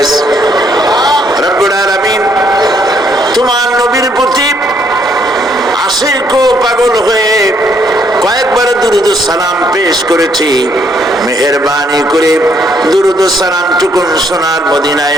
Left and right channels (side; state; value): both; normal; correlation 0.69